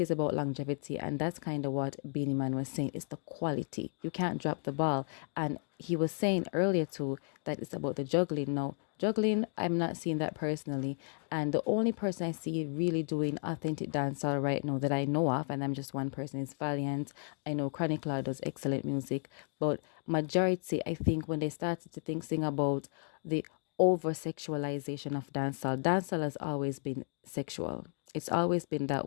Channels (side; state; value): right; silent; 55 dB below the other